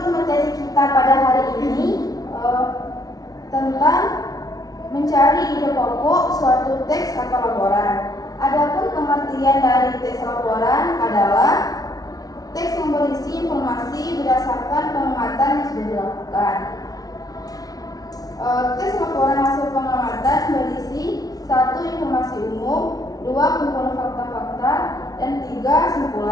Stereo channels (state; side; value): late; right; 0.18 ms